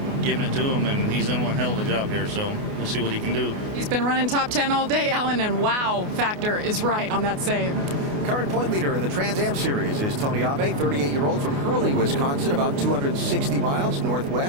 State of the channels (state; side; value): late; left; 28 ms